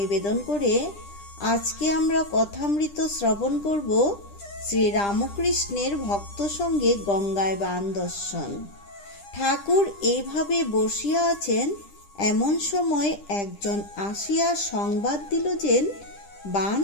করে আজকে আমরা কথামৃত শ্রবণ করব শ্রী রামকৃষ্ণের ভক্ত সঙ্গে গঙ্গায় বান দর্শন। ঠাকুর এইভাবে বসিয়া আছেন, এমন সময় একজন আসিয়া সংবাদ দিল যে বান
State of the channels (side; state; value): right; late; 10 ms